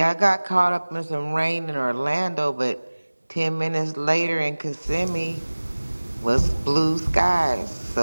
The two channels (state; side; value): inverted; both; correlation -1.00